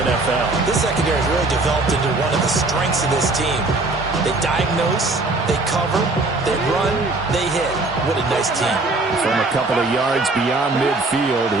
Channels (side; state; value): left; quieter; 3.2 dB